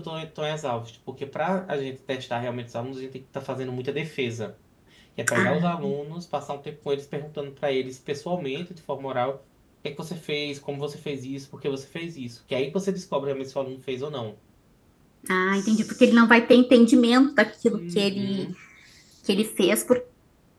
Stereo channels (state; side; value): identical; both; correlation 1.00